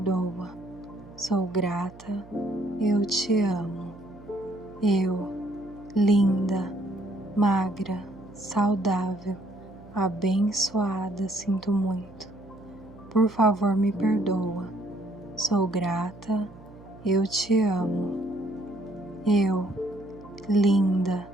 Sou grata. Eu te amo. Eu, linda, magra, saudável, abençoada, sinto muito. Por favor, me perdoa. Sou grata. Eu te amo. Eu, linda,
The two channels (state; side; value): noise; right; hum, 20 dB below the sound